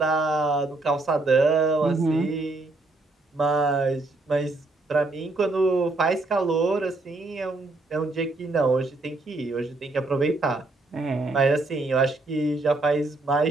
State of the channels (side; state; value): left; quieter; 3.1 dB